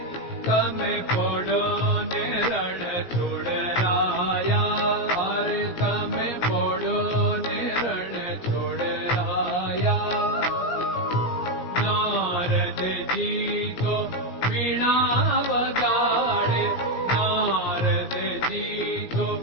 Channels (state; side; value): late; right; 17 ms